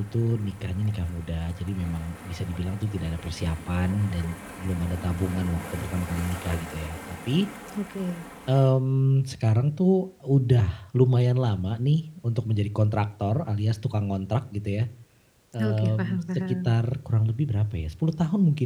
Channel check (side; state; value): both; identical; correlation 1.00